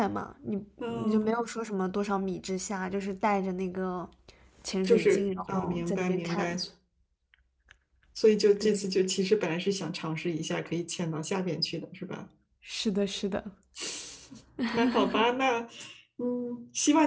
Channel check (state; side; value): identical; both; correlation 1.00